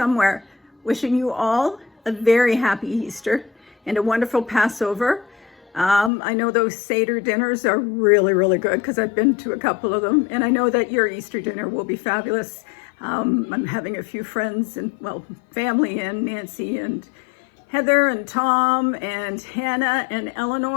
Wishing you all a very happy Easter and a wonderful Passover. I know those Seder dinners are really, really good because I've been to a couple of them. And I know that your Easter dinner will be fabulous. I'm having a few friends and, well, family in, Nancy and Heather and Tom and Hannah and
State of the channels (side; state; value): right; drops out; at 6.1 s